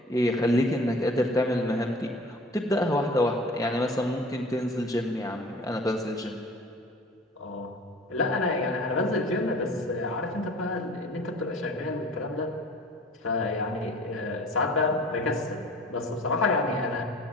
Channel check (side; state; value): both; normal; correlation 0.45